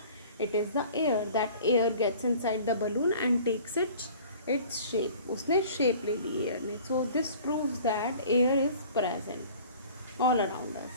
It is the air. That air gets inside the balloon and takes its shape. उसने शेप ले ली एयर ने. So this proves that air is present all around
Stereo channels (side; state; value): both; inverted; correlation -0.47